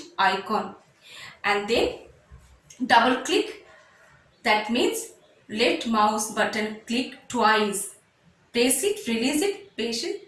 icon. And then double click. That means left mouse button click twice. Press it, release it, press it,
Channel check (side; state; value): both; identical; correlation 1.00